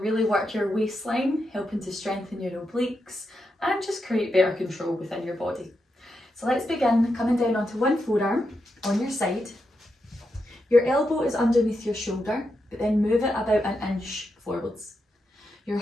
work your waistline, helping to strengthen your obliques and just create better control within your body. So let's begin coming down onto one forearm on your side. Your elbow is underneath your shoulder, but then move it about an inch forwards. Your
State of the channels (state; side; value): normal; both; correlation 0.85